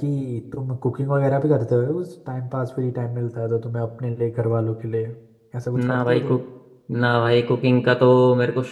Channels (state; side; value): identical; both; correlation 1.00